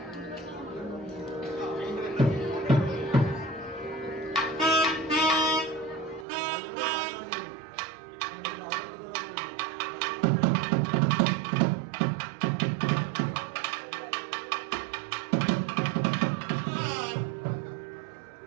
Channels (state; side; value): drops out; left; at 6.2 s